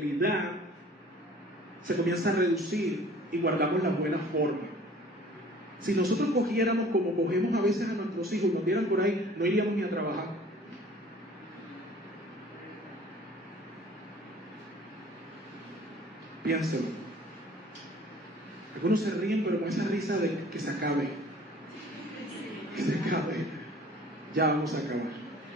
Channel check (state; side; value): normal; both; correlation 0.50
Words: se comienza a reducir y guardamos la buena forma. Si nosotros cogiéramos como cogemos a veces a nuestros hijos, nos dieran por ahí, no iríamos ni a trabajar. Piénselo. Algunos se ríen, pero con esa risa de que se acabe. Que se acabe. Ya vamos a acabar.